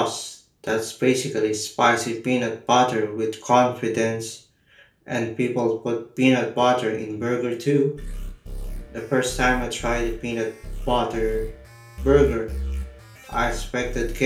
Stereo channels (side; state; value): both; identical; correlation 1.00